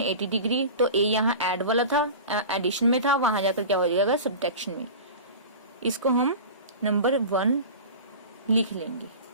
डिग्री। तो A यहाँ ऐड वाला था, एडिशन में था, वहां जाकर क्या हो जाएगा सब्ट्रैक्शन में। इसको हम नंबर 1 लिख लेंगे।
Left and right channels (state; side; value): inverted; both; correlation -0.34